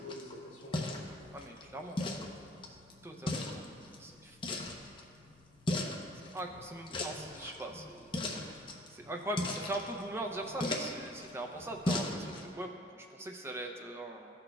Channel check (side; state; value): both; normal; correlation 0.52